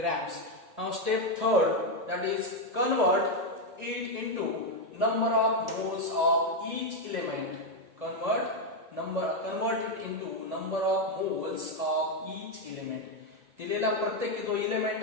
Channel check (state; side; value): late; left; 1.8 ms